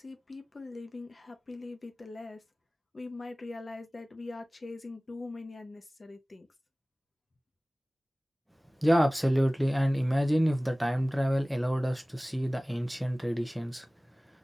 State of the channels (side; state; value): both; normal; correlation 0.98